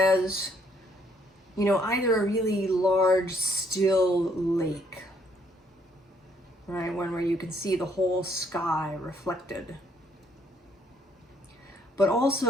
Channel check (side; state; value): both; normal; correlation 0.68